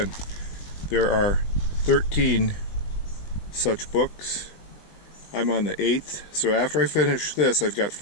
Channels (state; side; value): late; right; 20 ms